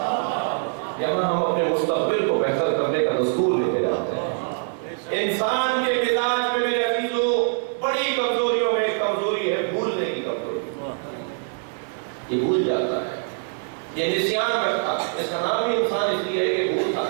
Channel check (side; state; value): left; silent; 63 dB below the other